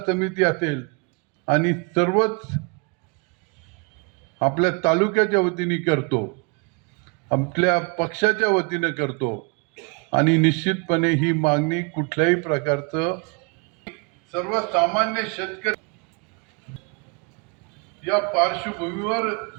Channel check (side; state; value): left; quieter; 32.2 dB